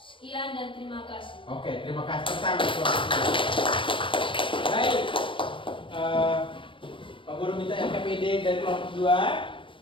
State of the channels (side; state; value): right; late; 0.25 ms